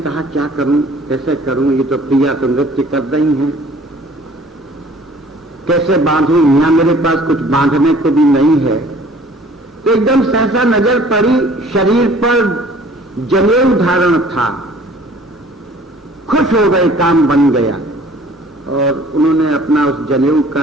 क्या करूं, कैसे करूं, ये तो प्रिया तो नृत्य कर रही हैं, कैसे बांधूं, यहां मेरे पास कुछ बांधने को भी नहीं है। तो एकदम सहसा नजर पड़ी, शरीर पर जनेऊ धारण था। खुश हो गए, काम बन गया। और उन्होंने अपना उस जनेऊ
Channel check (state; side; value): normal; both; correlation 0.52